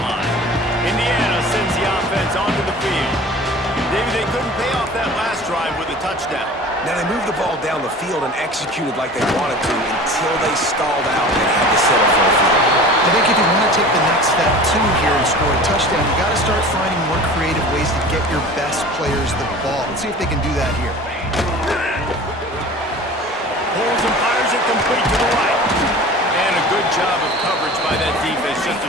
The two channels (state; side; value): normal; both; correlation 0.40